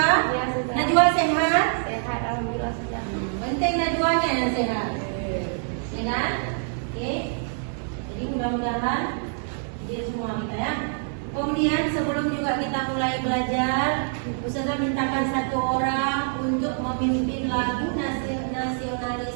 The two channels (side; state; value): left; silent; digital silence